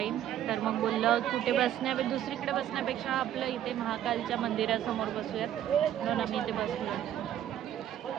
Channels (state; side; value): quieter; left; 11.3 dB